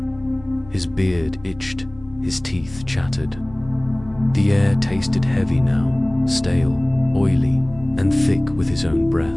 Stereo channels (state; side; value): noise; left; rumble, 20 dB below the sound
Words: His beard itched, his teeth chattered. The air tasted heavy now, stale, oily, and thick with his own